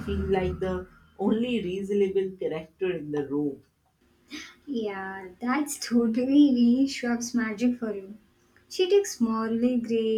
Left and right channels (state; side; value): identical; both; correlation 1.00